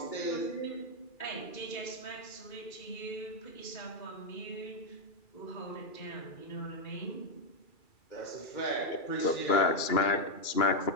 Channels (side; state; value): right; late; 2.3 ms